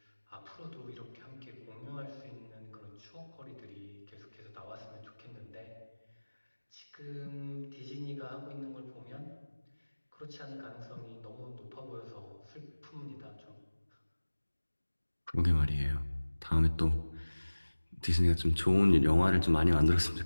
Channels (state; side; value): inverted; both; correlation -1.00